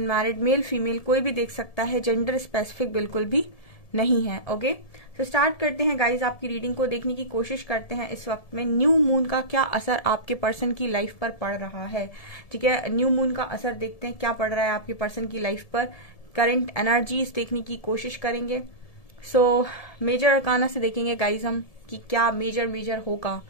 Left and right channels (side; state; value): right; late; 1.7 ms